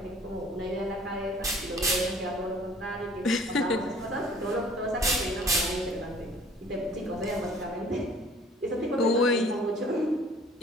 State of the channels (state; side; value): normal; both; correlation 0.52